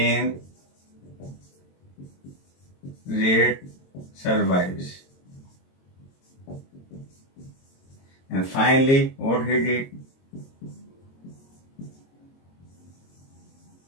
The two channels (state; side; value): late; right; 22 ms